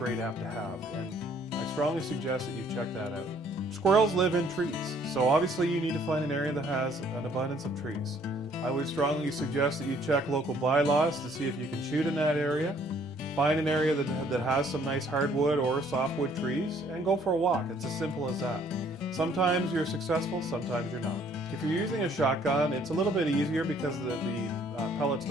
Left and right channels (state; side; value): normal; both; correlation 0.62